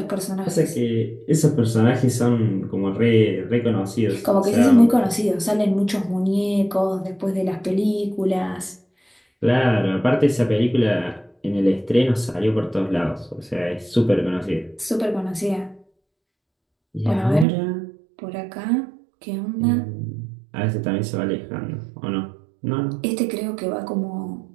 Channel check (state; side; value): drops out; left; at 17.4 s